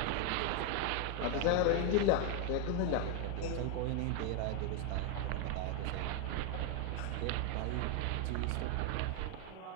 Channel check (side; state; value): both; different; correlation 0.01